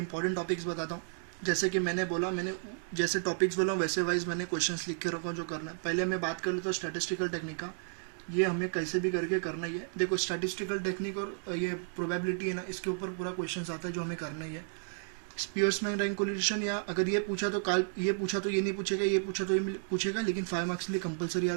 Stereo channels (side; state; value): left; silent; digital silence